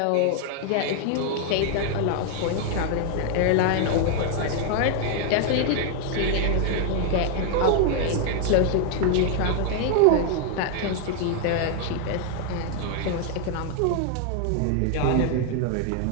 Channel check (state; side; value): different; both; correlation 0.00